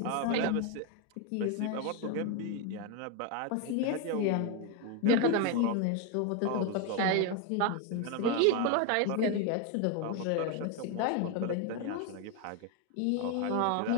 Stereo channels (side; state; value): both; different; correlation 0.01